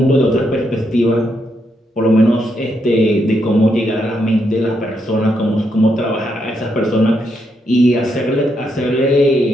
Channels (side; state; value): both; normal; correlation 0.79